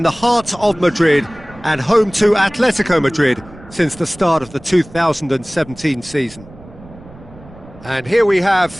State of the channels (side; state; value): right; noise; rumble, 20 dB below the sound